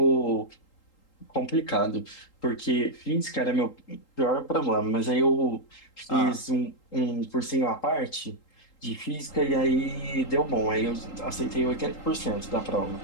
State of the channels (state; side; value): late; right; 3.8 ms